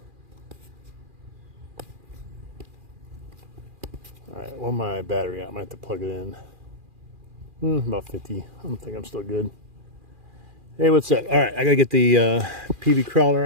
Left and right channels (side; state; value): left; late; 2.4 ms